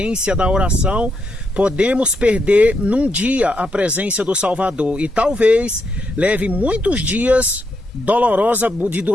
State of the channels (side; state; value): both; normal; correlation 0.80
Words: da oração, podemos perder num dia a presença do Salvador, e talvez leve muitos dias